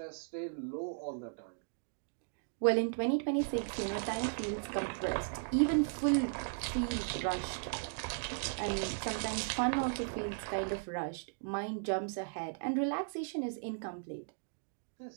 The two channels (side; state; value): left; silent; digital silence